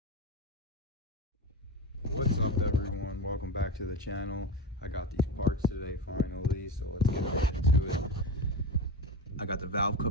What's up, everyone? Welcome back to the channel. I got these parts today finally, so let's get right into it. I got the valve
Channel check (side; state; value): both; normal; correlation 0.20